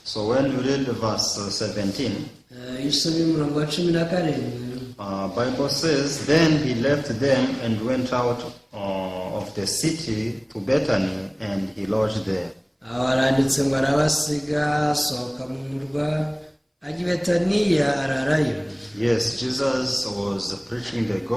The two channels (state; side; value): identical; both; correlation 1.00